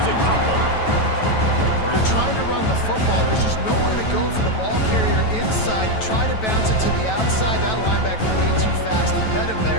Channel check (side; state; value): right; late; 9.2 ms